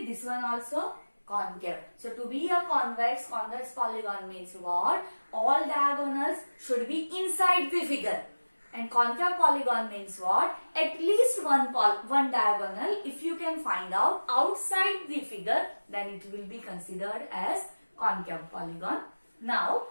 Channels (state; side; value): inverted; both; correlation -1.00